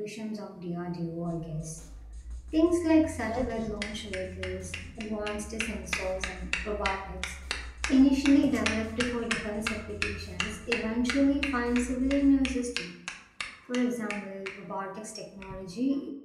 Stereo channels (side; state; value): both; identical; correlation 1.00